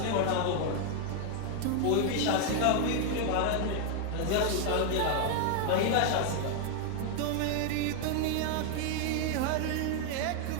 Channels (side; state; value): both; different; correlation 0.00